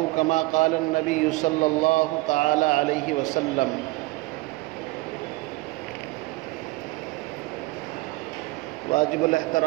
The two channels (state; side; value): quieter; left; 21.8 dB